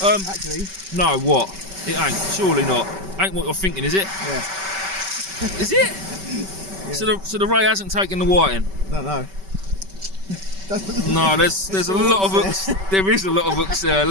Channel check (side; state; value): left; late; 5.2 ms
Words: Actually. No, what? It ain't. Surely not. Ain't what you're thinking, is it? Yeah. Is it? Yeah. So the ray hasn't taken the whiting? Don't know. No, there's a lot of hooks. There is a lot of hooks there.